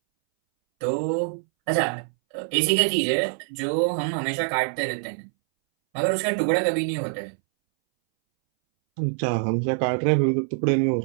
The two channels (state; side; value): silent; left; 61 dB below the other